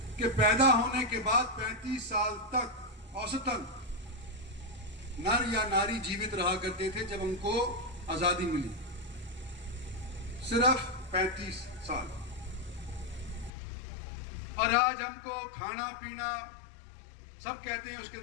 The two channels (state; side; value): drops out; right; at 13.5 s